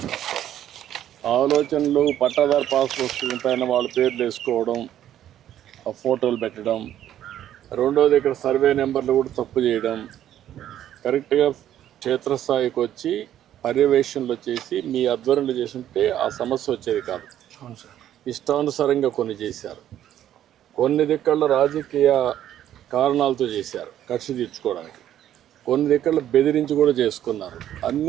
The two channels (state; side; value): quieter; left; 11.4 dB